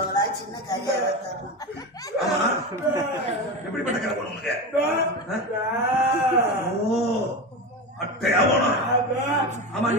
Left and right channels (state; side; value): normal; both; correlation 0.22